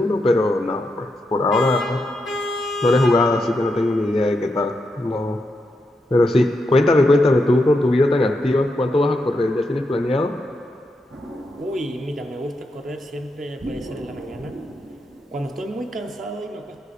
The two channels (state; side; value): normal; both; correlation 0.84